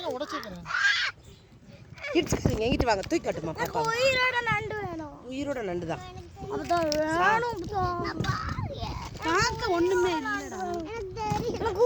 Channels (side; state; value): both; identical; correlation 1.00